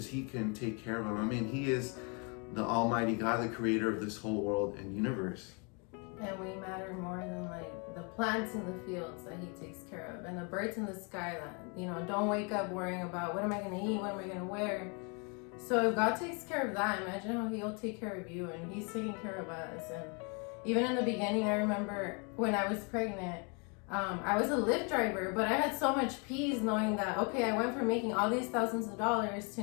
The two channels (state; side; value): quieter; right; 34.2 dB